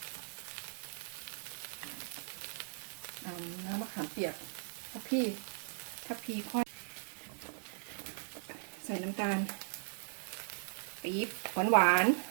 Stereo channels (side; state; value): left; silent; digital silence